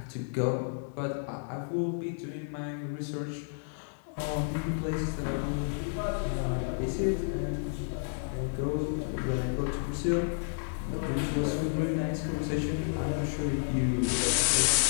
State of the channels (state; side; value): silent; right; digital silence